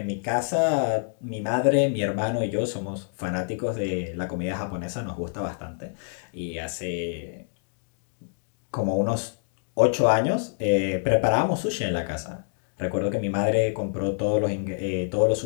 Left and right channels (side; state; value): right; silent; digital silence